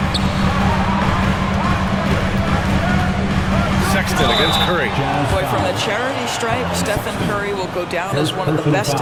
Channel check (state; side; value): identical; both; correlation 1.00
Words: Sexton against Curry. Boy, from the charity stripe, Stephen Curry will go down as one of the best